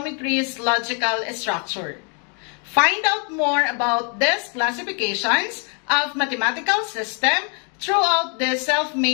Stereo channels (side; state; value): right; quieter; 38.8 dB